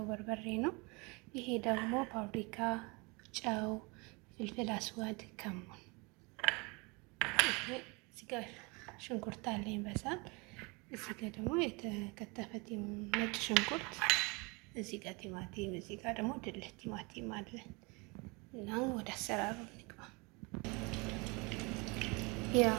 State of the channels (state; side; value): quieter; left; 28.2 dB